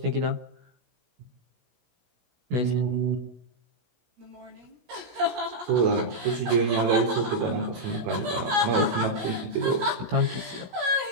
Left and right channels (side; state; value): left; late; 17 ms